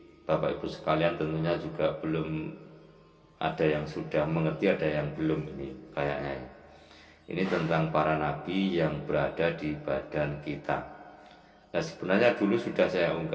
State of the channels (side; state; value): both; identical; correlation 1.00